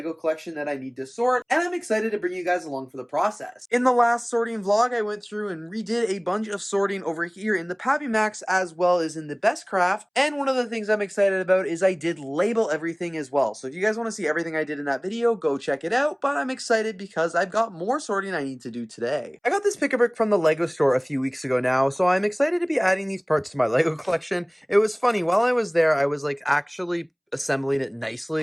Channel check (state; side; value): identical; both; correlation 1.00